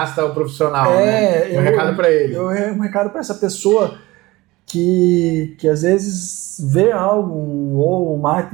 ao profissional, né? Um recado para ele. Um recado para essa pessoa que às vezes vê algo, ou o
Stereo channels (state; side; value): quieter; left; 20.3 dB